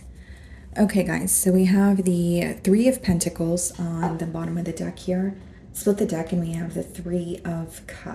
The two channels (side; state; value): both; identical; correlation 1.00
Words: Okay, guys, so we have the Three of Pentacles on the bottom of the deck here. Split the deck and we have the Three of